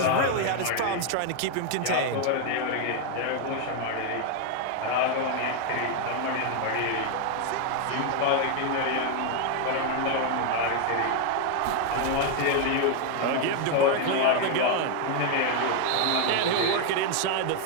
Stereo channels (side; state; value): both; different; correlation 0.01